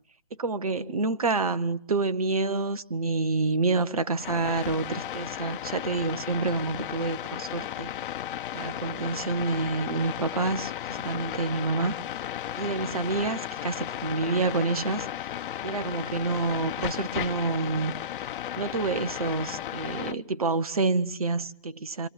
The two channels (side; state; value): both; inverted; correlation -0.37